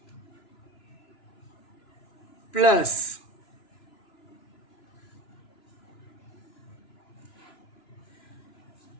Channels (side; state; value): right; late; 2.9 ms